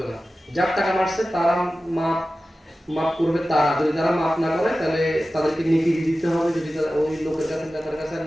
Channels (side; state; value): both; normal; correlation 0.95